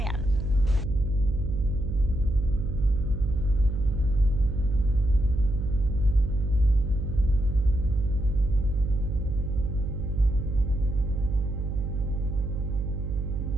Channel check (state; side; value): noise; right; hum, 3 dB below the sound